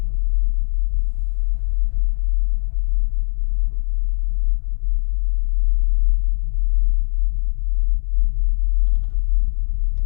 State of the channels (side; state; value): right; silent; digital silence